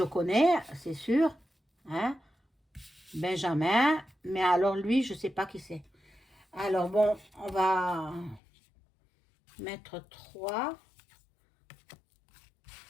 connais, c'est sûr. Hein? Benjamin. Mais alors lui, je sais pas qui c'est. Alors bon, on va mettre 3.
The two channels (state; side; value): drops out; right; at 8.4 s